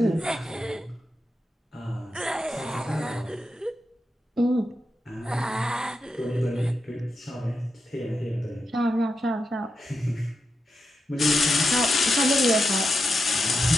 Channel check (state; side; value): normal; both; correlation 0.87